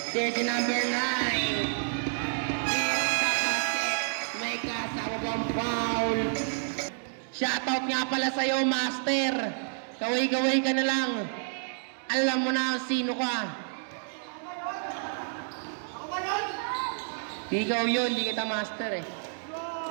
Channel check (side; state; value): left; silent; digital silence